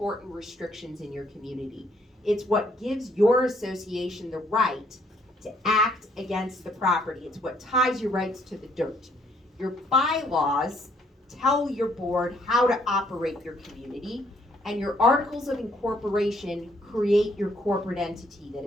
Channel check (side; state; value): both; normal; correlation 0.67